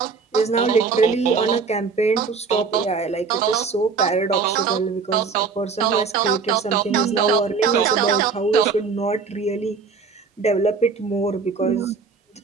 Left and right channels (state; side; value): quieter; left; 5.1 dB